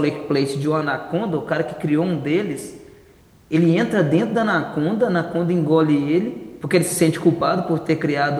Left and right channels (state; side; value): identical; both; correlation 1.00